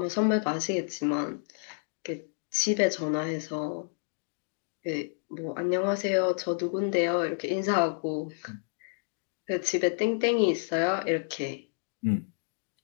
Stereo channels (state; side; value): silent; right; digital silence